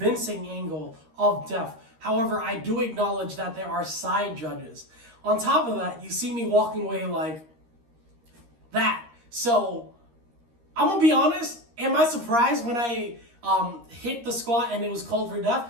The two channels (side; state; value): left; late; 13 ms